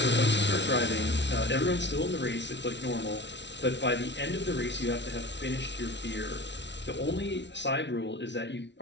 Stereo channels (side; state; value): right; late; 0.51 ms